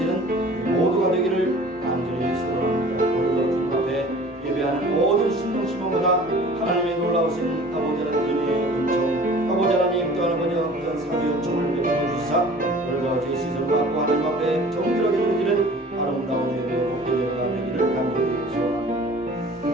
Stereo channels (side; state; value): both; normal; correlation 0.46